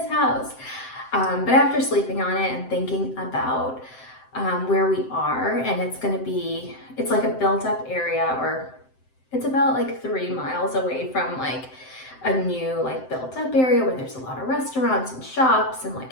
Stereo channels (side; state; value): right; late; 7.7 ms